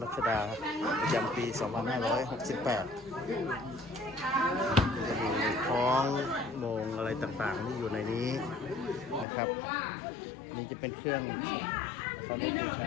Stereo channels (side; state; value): right; drops out; at 9.2 s